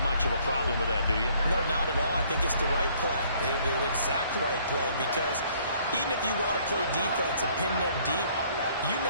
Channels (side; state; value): both; inverted; correlation -0.61